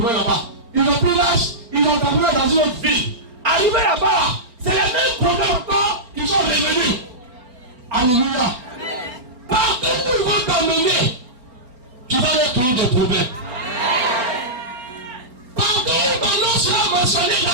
là-bas. Ils ont pris l'âge, ils ont terminé dans une autre ville. Arrivé là-bas, c'est les mêmes problèmes encore, ils sont revenus. Alléluia. Partout où ils vont t'emmener, tu vas leur créer des problèmes. Partout où ton nom sera mentionné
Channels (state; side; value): late; left; 4.3 ms